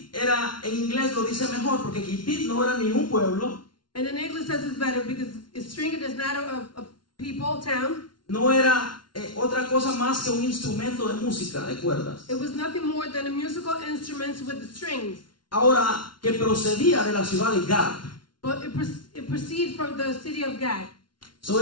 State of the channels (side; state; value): right; late; 0.71 ms